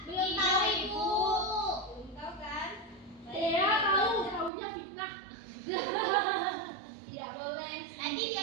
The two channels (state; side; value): drops out; left; at 4.5 s